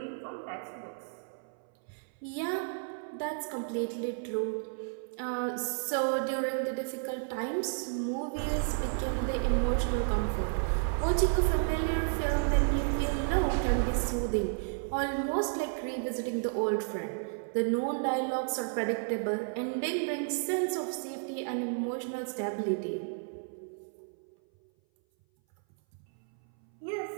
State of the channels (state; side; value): silent; left; 56 dB below the other